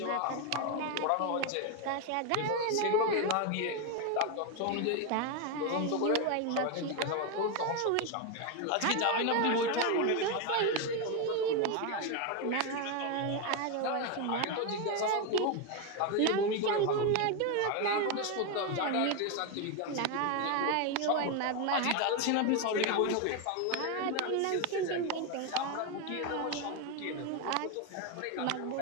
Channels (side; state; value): both; different; correlation 0.02